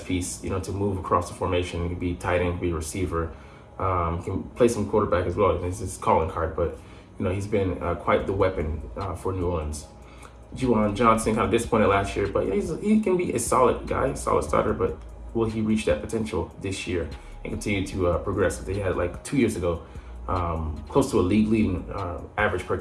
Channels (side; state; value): both; identical; correlation 1.00